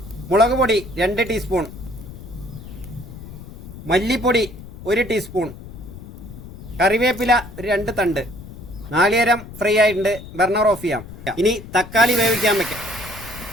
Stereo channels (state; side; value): noise; left; rumble, 14 dB below the sound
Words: മുളക് പൊടി 2 ടീസ്പൂൺ. മല്ലിപ്പൊടി 1 ടീസ്പൂൺ. കറിവേപ്പില 2 തണ്ട്. നാളികേരം ഫ്രൈ ആയിട്ടുണ്ട്, ബർണർ ഓഫ് ചെയ്യാം. ഇനി തക്കാളി വേവിക്കാൻ വെക്കാം.